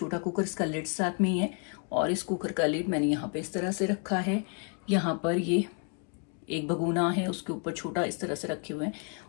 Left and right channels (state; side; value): quieter; right; 39.3 dB